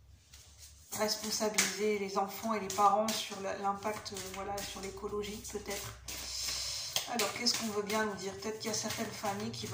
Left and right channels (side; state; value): both; identical; correlation 1.00